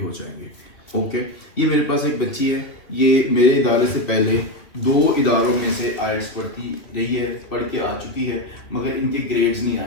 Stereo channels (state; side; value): late; right; 2.5 ms